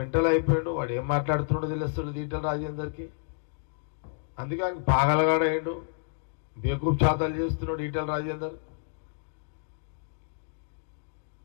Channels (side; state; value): right; silent; digital silence